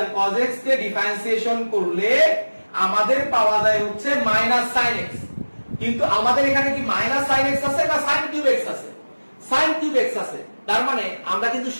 cos x কে ডিফারেন্সিয়েশন করলে আমাদের পাওয়া যায় হচ্ছে মাইনাস sin x। কিন্তু আমাদের এখানে কি মাইনাস sin x আছে না sin কিউব x আছে? sin কিউব x আছে। তার মানে আমরা কিন্তু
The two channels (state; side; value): inverted; both; correlation -1.00